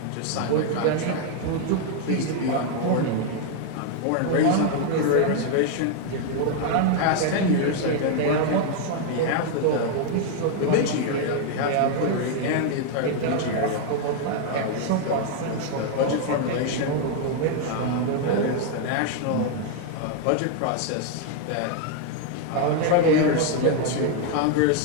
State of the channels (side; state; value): both; different; correlation 0.00